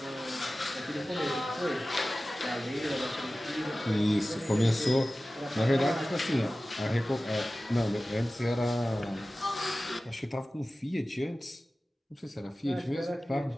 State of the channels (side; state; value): both; normal; correlation 0.96